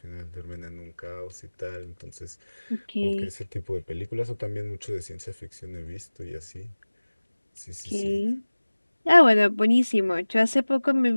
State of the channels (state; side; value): inverted; both; correlation -1.00